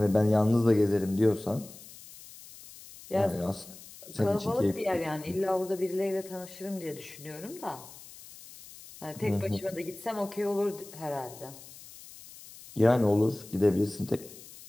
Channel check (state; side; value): noise; left; hiss, 18 dB below the sound